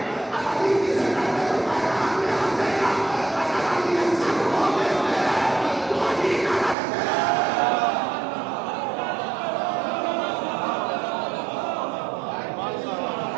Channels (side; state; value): left; drops out; at 6.8 s